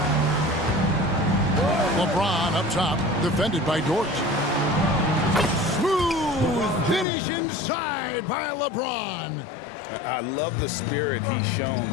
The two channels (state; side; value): drops out; right; at 7.1 s